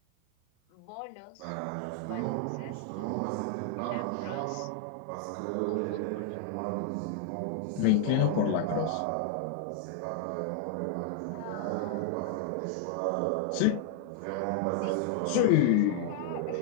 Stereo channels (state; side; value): different; both; correlation 0.00